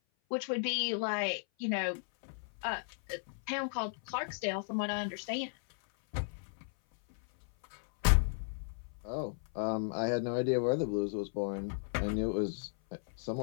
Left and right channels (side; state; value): right; silent; 54 dB below the other